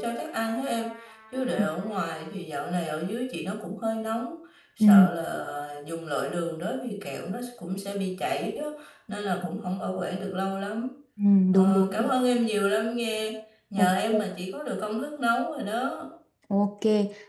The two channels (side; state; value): both; identical; correlation 1.00